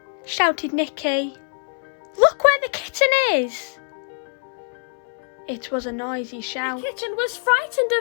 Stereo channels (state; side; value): silent; right; 56 dB below the other